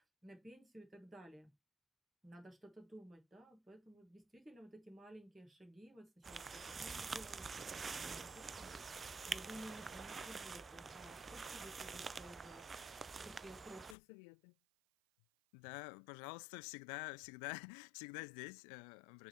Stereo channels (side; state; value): right; drops out; at 14.0 s